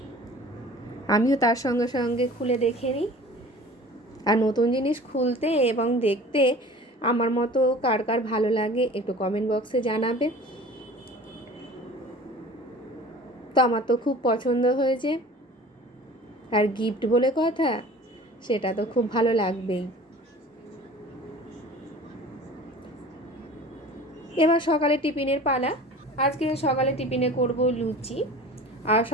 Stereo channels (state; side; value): normal; both; correlation 0.43